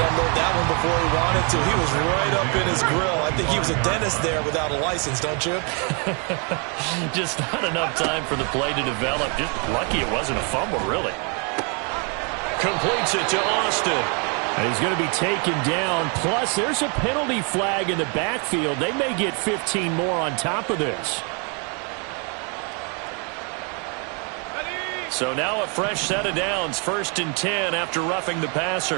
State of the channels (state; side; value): quieter; left; 35.8 dB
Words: to unload that one before he wanted to. He was right up in his grill. I think he was a dentist there without a license, don't you? Just not enough time for the play to develop. Just lucky it wasn't a fumble, really. Completes it to Austin. And he's going to be taken down. Plus, there's a penalty flag in the backfield. They may get 15 more on top of this. So now a fresh set of downs. 1st and 10 after roughing the